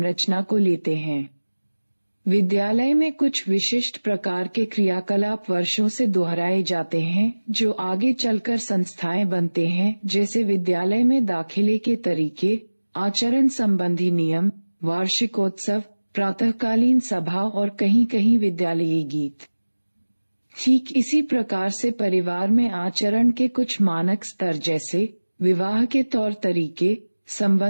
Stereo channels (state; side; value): inverted; both; correlation -1.00